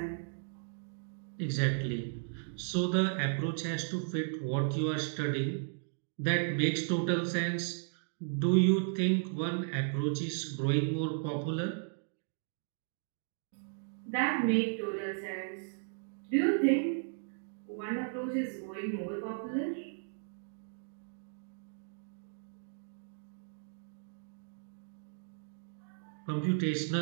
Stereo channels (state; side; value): silent; left; digital silence